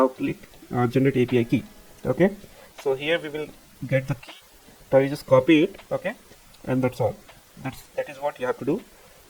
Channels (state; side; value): identical; both; correlation 1.00